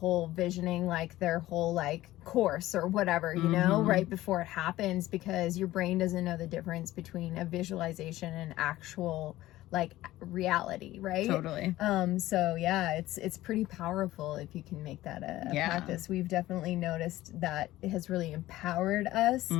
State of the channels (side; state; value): right; quieter; 16.1 dB